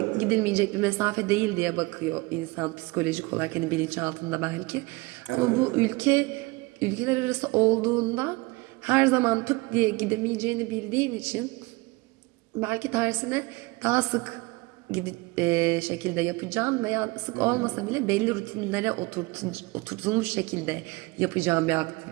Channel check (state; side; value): quieter; left; 24.2 dB